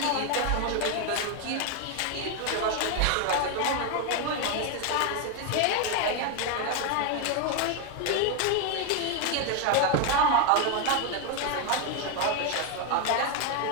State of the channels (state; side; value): different; both; correlation 0.01